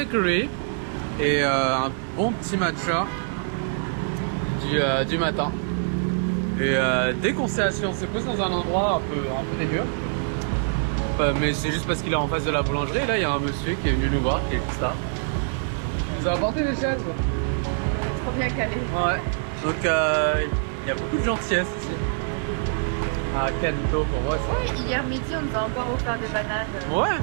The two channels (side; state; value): left; silent; digital silence